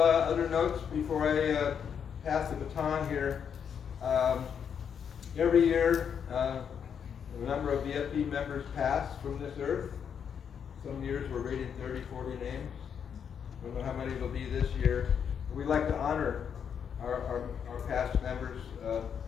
other notes before I pass the baton here. Every year, a number of VFP members pass from this earth. Some years we're rating 30, 40 names. I don't know how many it'll be this year. We'd like to honor our past members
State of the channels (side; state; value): right; quieter; 7.6 dB